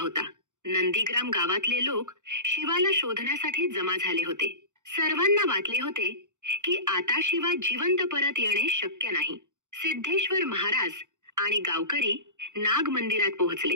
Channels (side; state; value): left; late; 0.85 ms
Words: नंदीग्राम गावातले लोक शिवाला शोधण्यासाठी जमा झाले होते. सर्वांना वाटले होते की आता शिवा जिवंत परत येणे शक्य नाही. सिद्धेश्वर महाराज आणि गावकरी नाग मंदिरात